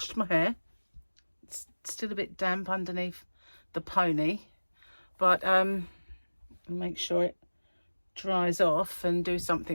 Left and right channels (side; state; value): both; inverted; correlation -1.00